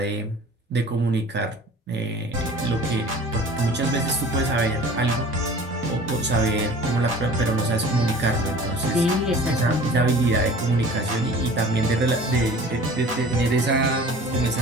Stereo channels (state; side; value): normal; both; correlation 0.43